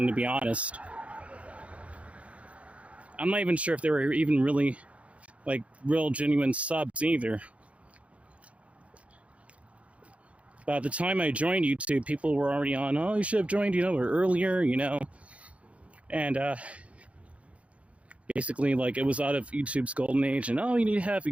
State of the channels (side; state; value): left; late; 0.064 ms